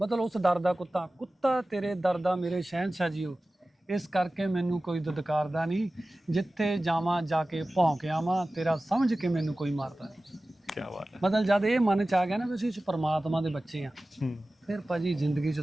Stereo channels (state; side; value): normal; both; correlation 0.96